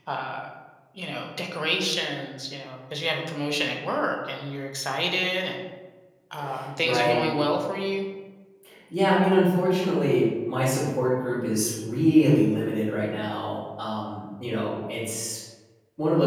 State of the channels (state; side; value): identical; both; correlation 1.00